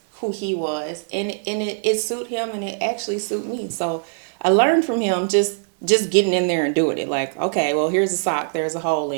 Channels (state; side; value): silent; left; 64 dB below the other